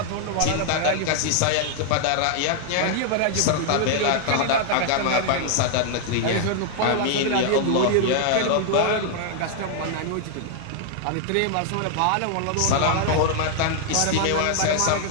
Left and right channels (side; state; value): both; different; correlation 0.00